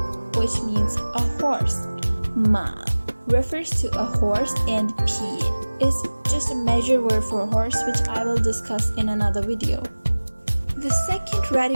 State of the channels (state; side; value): inverted; both; correlation -1.00